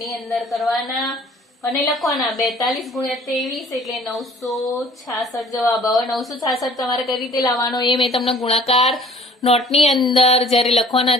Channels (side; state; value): both; normal; correlation 0.51